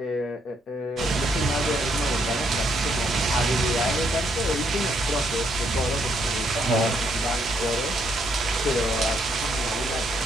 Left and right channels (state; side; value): normal; both; correlation 0.73